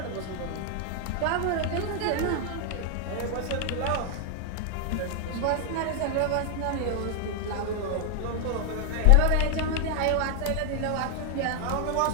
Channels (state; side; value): different; both; correlation 0.00